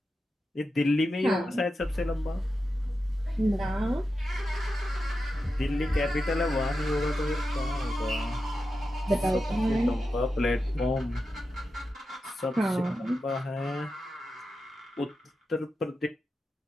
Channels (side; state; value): both; normal; correlation 0.90